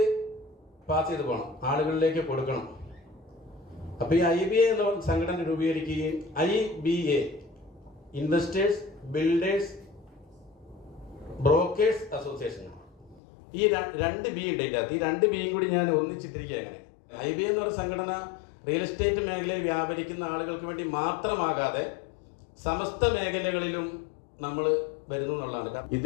പാസ് ചെയ്ത് പോകണം, ആളുകളിലേക്ക് കൊടുക്കണം. അപ്പോൾ ഈ IBA എന്ന സംഘടന രൂപീകരിക്കുകയും IBA investors builders brokers association, ഈ 2 B ഉണ്ട്. ഈ 2 Bയും കൂടി ഞാൻ ഒന്നിച്ചിട്ടിരിക്കുക. അങ്ങനെ IBA എന്ന് പറയുന്ന സംഘടന റിയൽ എസ്റ്റേറ്റ് മേഖലയിൽ വ്യാപരിക്കുന്ന ആളുകൾക്ക് വേണ്ടി മാത്രമാകാതെ സമസ്ത മേഖലകളിലും നമ്മൾ വരുന്നു എന്നുള്ളതാണ്.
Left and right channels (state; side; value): drops out; right; at 13.2 s